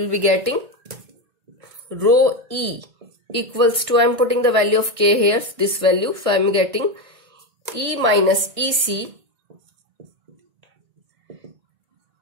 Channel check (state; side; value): late; left; 1.6 ms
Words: be getting rho E equals to, I'm putting the value of K here, this value. So I'm getting E minus EC,